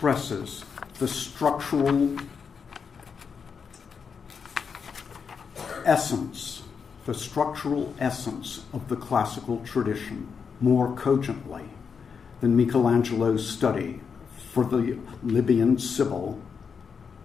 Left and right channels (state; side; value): quieter; right; 6.1 dB